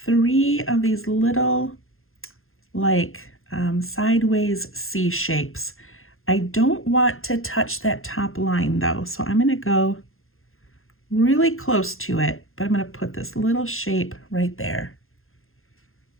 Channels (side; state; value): right; late; 0.61 ms